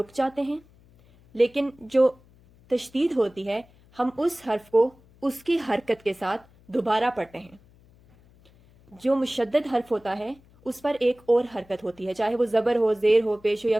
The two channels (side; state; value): left; noise; hum, 28 dB below the sound